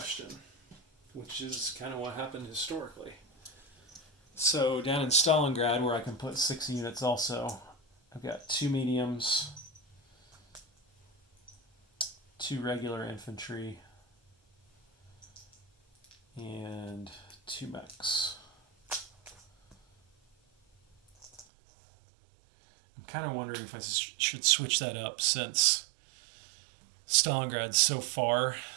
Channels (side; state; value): left; drops out; at 21.5 s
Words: which is kind of what happened historically. So down in Stalingrad, where I can put 6 units also, I've got 2 mediums, 2 regular infantry, and 2 mechs. I'm kind of wondering if I should switch that up since Stalingrad's so far